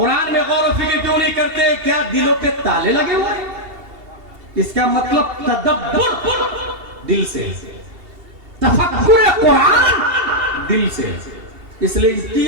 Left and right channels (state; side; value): late; left; 2.7 ms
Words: میں غور و فکر کیوں نہیں کرتے؟ کیا دلوں پہ تالے لگے ہوئے ہیں؟ اس کا مطلب تدبر دل سے، تفکر قرآن دل سے. اس لیے ان